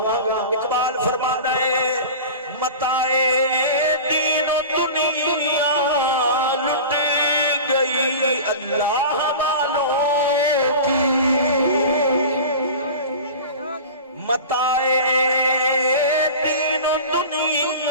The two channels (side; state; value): both; inverted; correlation -0.34